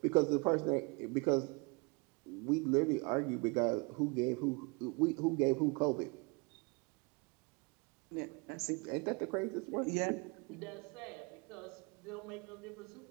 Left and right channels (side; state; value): left; quieter; 30.0 dB